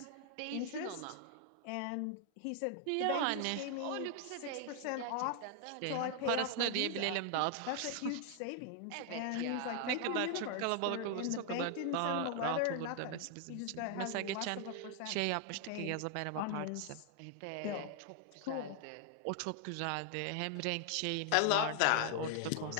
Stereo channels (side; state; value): both; different; correlation 0.00